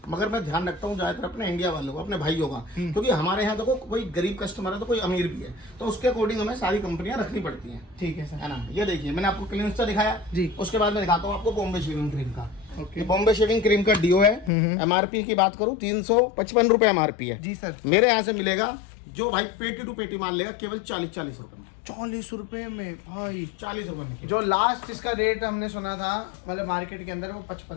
मगर मैं ध्यान रखता हूँ ज्यादातर अपने इंडिया वालों को, अपने भाइयों का। क्योंकि हमारे यहाँ देखो कोई गरीब कस्टमर है तो कोई अमीर भी है, तो उसके अकॉर्डिंग हमें सारी कंपनियां रखनी पड़ती हैं। ठीक है सर। है ना। ये देखिए, मैंने आपको क्लिंस्टा दिखाया जी। उसके बाद मैं दिखाता हूँ आपको बॉम्बे शेविंग क्रीम का। ओके। बॉम्बे शेविंग क्रीम का डिओ है। एमआरपी की बात करूँ 355 रुपए एमआरपी है। जी सर। मेरे यहाँ से मिलेगा जो भाई पेटी टू पेटी मान लेगा केवल 40 रुपए में। 40 रुपए में भाई? 40 रुपए में। जो लास्ट इसका रेट हमने सुना था मतलब मार्केट के अंदर, वो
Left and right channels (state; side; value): drops out; right; at 14.5 s